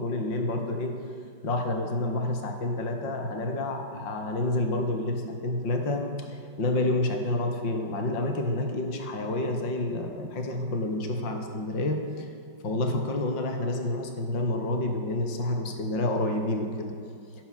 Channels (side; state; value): right; late; 5.2 ms